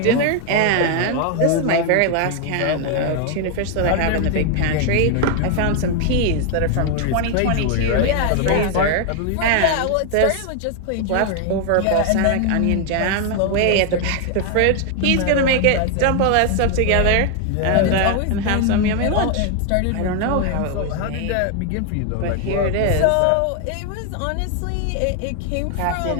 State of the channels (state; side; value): different; both; correlation 0.00